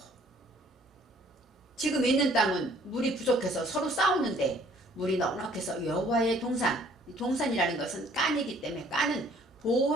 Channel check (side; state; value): both; normal; correlation 0.59